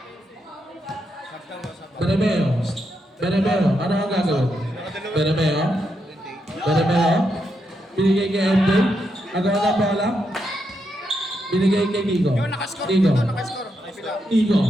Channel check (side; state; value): both; normal; correlation 0.82